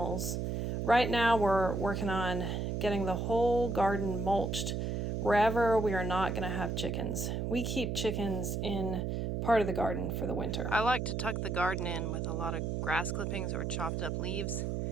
Right now we're working on getting the whole garden mulched wherever we are not going to have chickens. We keep chickens in part of the garden for the winter. I like to tuck the garden in with a lot of grass clippings or chopped up leaves.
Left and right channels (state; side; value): noise; right; hum, 1 dB below the sound